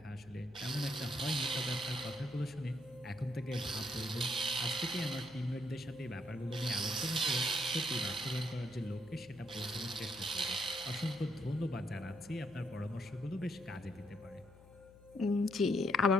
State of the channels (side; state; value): left; noise; hum, 23 dB below the sound